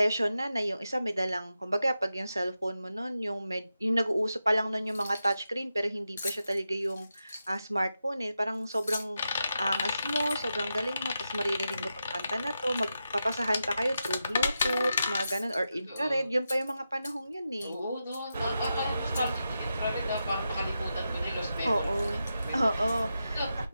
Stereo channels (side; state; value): both; inverted; correlation -0.89